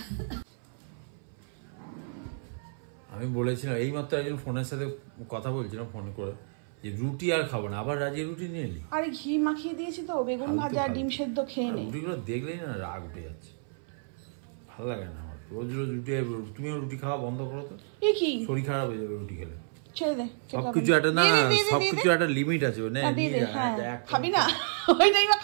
আমি বলেছিলাম এইমাত্র একজন ফোনের সাথে কথা বলছিলাম ফোনে করে, যে রুটি আর খাবো না, আবার রাজি রুটি নিয়ে এলি। আরে ঘি মাখিয়ে দিয়েছি তো, বেগুন ভাজা ডিম সেদ্ধ খেয়ে নে। রুটিগুলো দেখলেই না রাগ উঠে যাচ্ছে, ভালো লাগে না আমার রোজ রোজ রুটি। তুমিও রুটি খাওয়া বন্ধ করো তো, কি শরীর খারাপ হয়ে যাবে রুটি খেলে। ছেড়ে দে, সবকিছু একটা না, সবকিছু একটা লিমিট আছে। খাবি না ওইটাই বা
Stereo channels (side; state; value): left; silent; 58 dB below the other